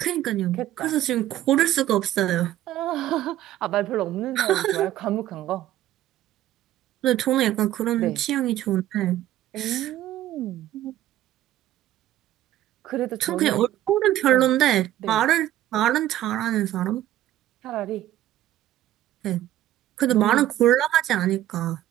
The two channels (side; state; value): left; quieter; 13.5 dB